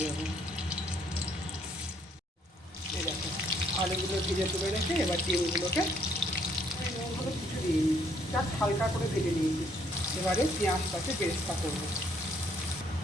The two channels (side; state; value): both; normal; correlation 0.67